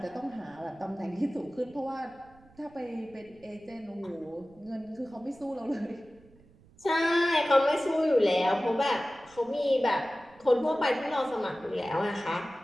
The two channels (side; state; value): right; noise; rumble, 27 dB below the sound